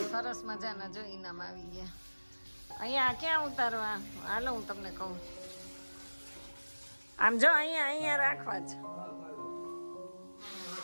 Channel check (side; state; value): both; inverted; correlation -1.00